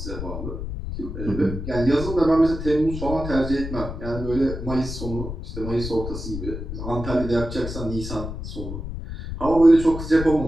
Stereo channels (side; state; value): left; noise; rumble, 7 dB below the sound